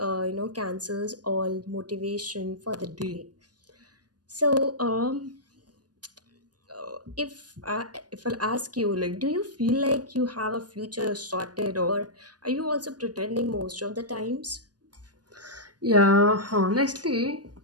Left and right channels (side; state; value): left; late; 0.69 ms